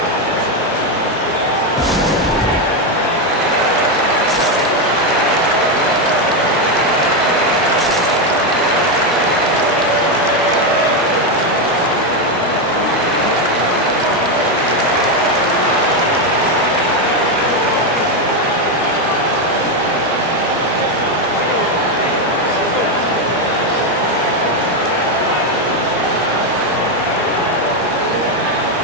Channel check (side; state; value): both; normal; correlation 0.07